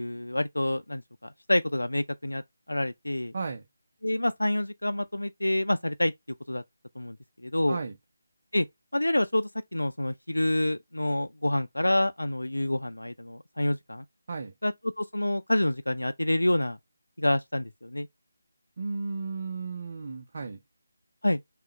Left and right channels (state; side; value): inverted; both; correlation -0.99